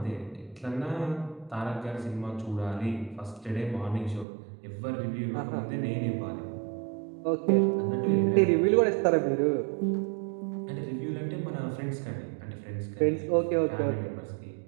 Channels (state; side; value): drops out; left; at 4.2 s